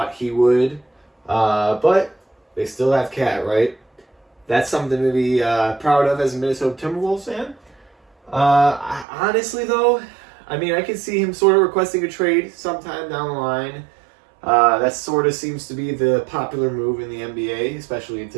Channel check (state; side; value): drops out; left; at 9.1 s